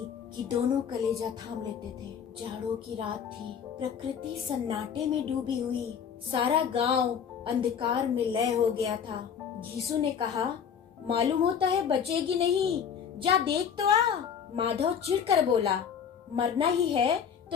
कि दोनों कलेजा थाम लेते थे। जाड़ों की रात थी, प्रकृति सन्नाटे में डूबी हुई, सारा गांव अंधकार में लय हो गया था। घीसू ने कहा, मालूम होता है बचेगी नहीं, जा देख तो आ। माधव चिढ़कर बोला, मरना ही है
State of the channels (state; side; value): quieter; right; 7.6 dB